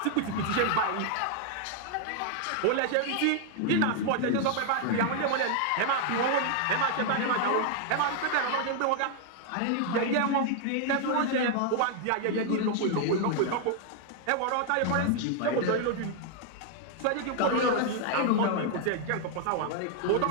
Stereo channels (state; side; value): different; both; correlation 0.00